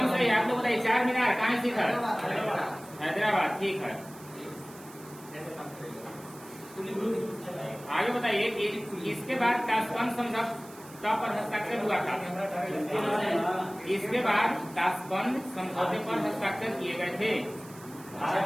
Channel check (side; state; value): right; noise; hiss, 20 dB below the sound